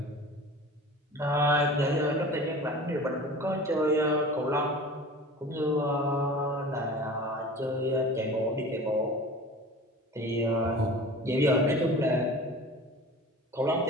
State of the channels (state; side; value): normal; both; correlation 0.39